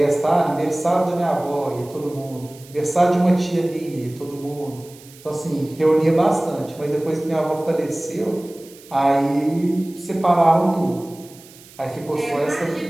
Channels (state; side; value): noise; right; hiss, 22 dB below the sound